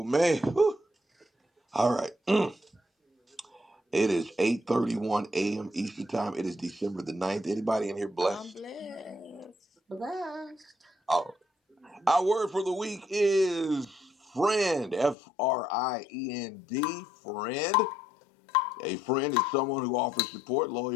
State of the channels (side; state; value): right; drops out; at 15.2 s